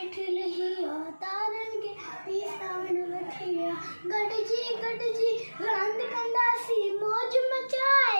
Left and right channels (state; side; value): inverted; both; correlation -1.00